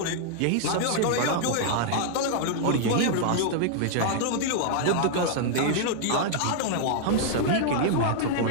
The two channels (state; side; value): different; both; correlation -0.01